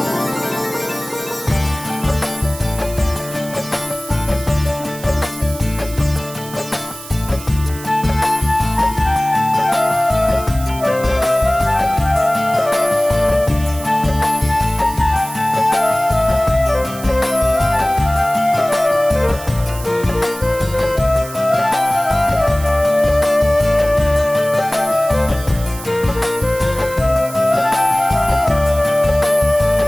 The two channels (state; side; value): noise; right; hiss, 15 dB below the sound